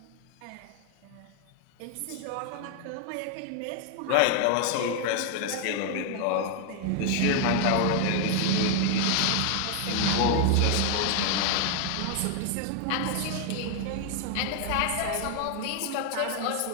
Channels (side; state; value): both; different; correlation 0.00